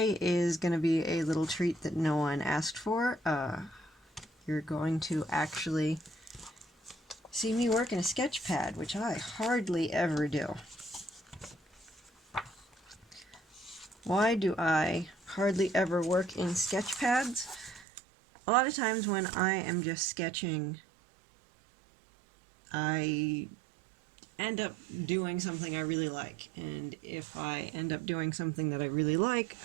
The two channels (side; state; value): left; drops out; at 17.9 s